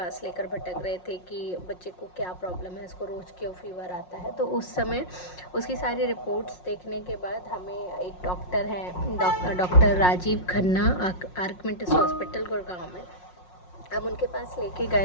लेकर भटक रहे थे कि बच्चे को क्या प्रॉब्लम है, इसको रोज़ क्यों फीवर आता है, तो उस समय उसकी सारी रिपोर्ट्स देखने के बाद हमें एक डॉक्टर हैं, डॉक्टर राजीव खन्ना, आर्कमिंटस हॉस्पिटल गुड़गांव में। अब उनके पास लेके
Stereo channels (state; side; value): late; right; 5.5 ms